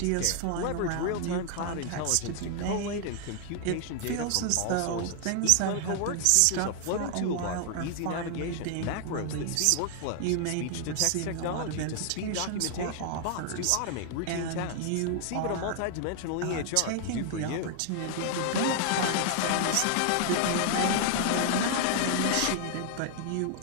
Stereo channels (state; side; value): different; both; correlation 0.00